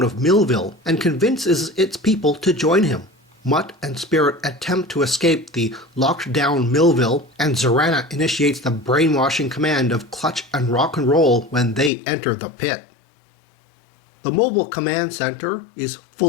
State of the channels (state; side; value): drops out; right; at 11.9 s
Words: of Millville and convinces its people to join him. Mutt and Spirit attempt to escape the locked-down Millville, and Zorana initiates the brainwashing command of Clutch and Rock and Roll when they enter the pit. The Mobile Command Center is